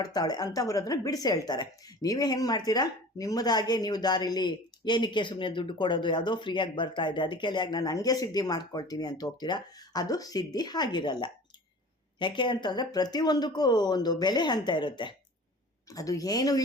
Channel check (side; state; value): both; normal; correlation 0.41